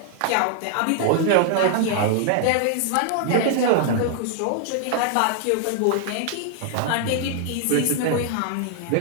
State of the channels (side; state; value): both; different; correlation -0.01